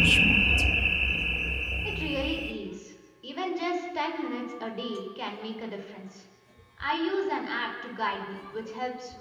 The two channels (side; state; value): both; identical; correlation 1.00